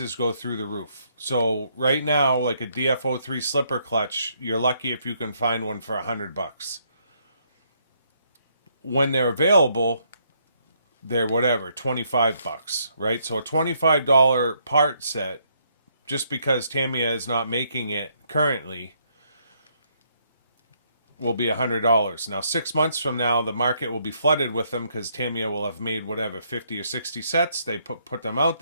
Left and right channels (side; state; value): both; inverted; correlation -0.72